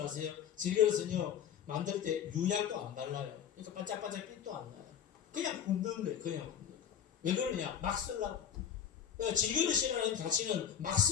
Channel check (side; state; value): right; quieter; 8.8 dB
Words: 아세요? 질그릇은요 만들 때 유약도 안 발라요. 그러니까 반짝반짝 빛도 안 나요. 그냥 굽는 거예요. 그냥 굽는 거. 왜 그러냐? 막 쓰려고. 그러니까 질그릇이라는 가치는 막